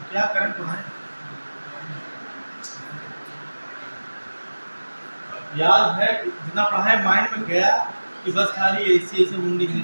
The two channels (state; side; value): inverted; both; correlation -1.00